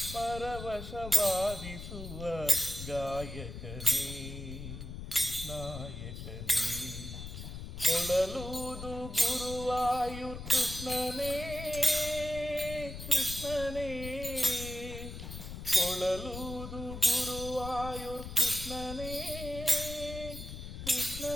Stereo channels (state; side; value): noise; left; rumble, 9 dB below the sound